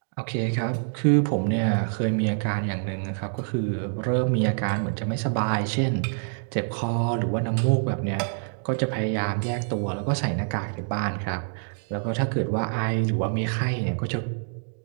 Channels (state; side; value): silent; left; digital silence